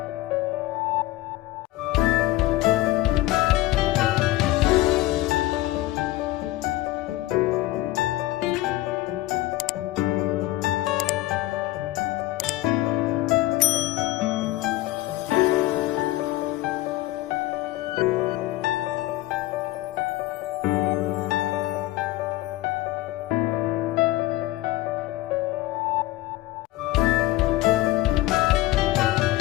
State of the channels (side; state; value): right; quieter; 17.3 dB